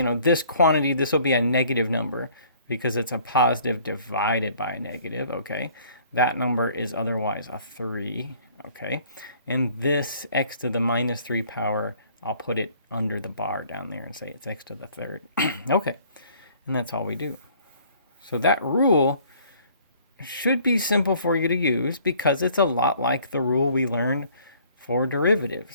quantity, this will be a negative number because it's a positive divided by a negative, okay? That number is otherwise a 3, okay? And this x to the -3 power, I'll put it under the bar down there and say it's x to the 3rd. Okay, and that's all we do. So that rule should be simple for you to use because it's a lot like the rule we learned for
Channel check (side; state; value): both; inverted; correlation -0.57